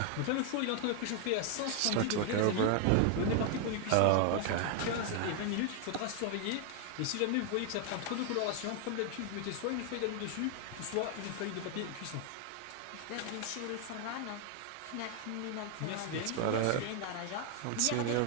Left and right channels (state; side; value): different; both; correlation 0.00